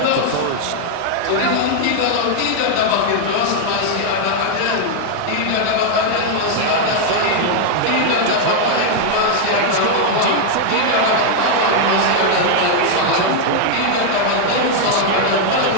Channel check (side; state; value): both; different; correlation 0.00